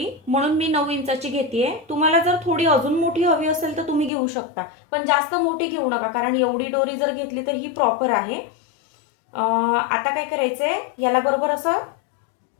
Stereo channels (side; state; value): right; drops out; at 4.1 s